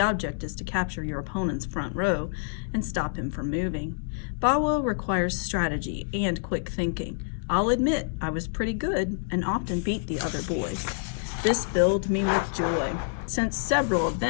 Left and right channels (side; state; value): right; silent; digital silence